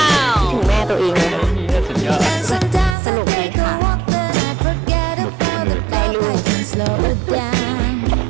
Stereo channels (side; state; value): left; drops out; at 3.0 s